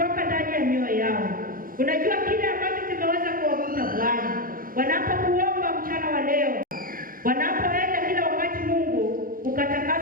ndani ya mioyo yao. Unajua kile ambacho kimeweza kuwakuta Bwana wanapokuomba mchana wa leo, wanapoenda kila wakati. Mungu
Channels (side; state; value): left; late; 0.41 ms